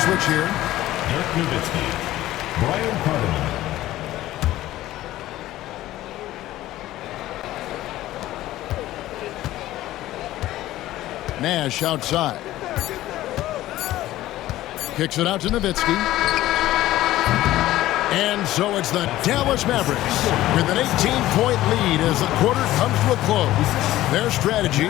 switch here. Dirk Nowitzki. Brian Cardinal. Nash outside. Kicks it out to Nowitzki. And so it's the Dallas Mavericks with an 18-point lead as the quarter comes to a close. Their strategy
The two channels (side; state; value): right; quieter; 15.2 dB